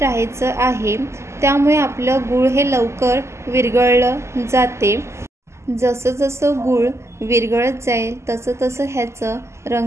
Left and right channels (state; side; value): late; left; 0.13 ms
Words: आहे। त्यामुळे आपलं गूळ हे लवकर विरघळलं जाते। जसं जसं गूळ विरघळत जाईल तसं तसं ह्याचं